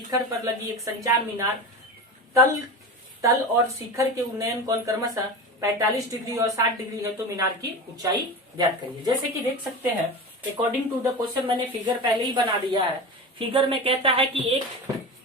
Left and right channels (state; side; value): normal; both; correlation 0.27